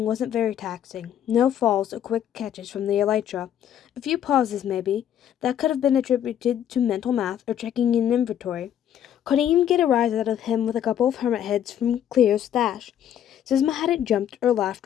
wasn't very taxing. No falls or quick catches from the elytra. A few pauses, maybe. That could have been attributed to mental math or checking an inventory. Couldn't even get a rise out of him with a couple of hermit heads from Cleo's stash. Zizma hadn't jumped or laughed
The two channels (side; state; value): right; quieter; 10.2 dB